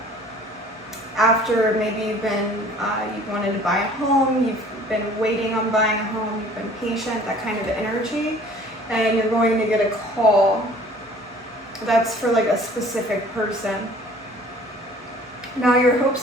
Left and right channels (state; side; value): normal; both; correlation 0.51